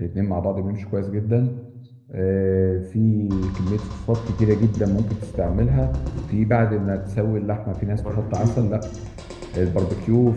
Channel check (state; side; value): identical; both; correlation 1.00